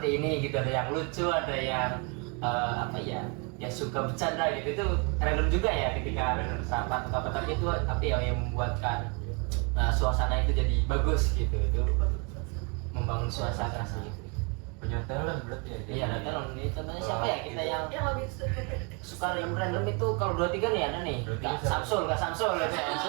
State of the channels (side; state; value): left; quieter; 33.5 dB